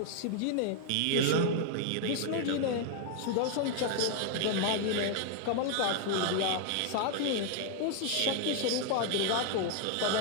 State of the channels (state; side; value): different; both; correlation 0.00